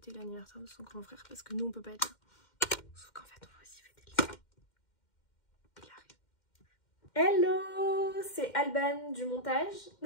l'anniversaire de son grand frère parce que nous on peut pas être là. Sauf qu'en fait on va aussi fêter le sien. Il arrive. Hello, c'est Alban du montage.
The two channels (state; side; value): late; right; 2.1 ms